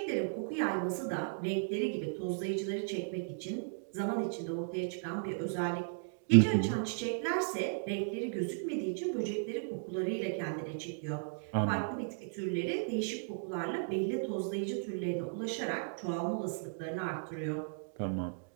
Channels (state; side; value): silent; left; digital silence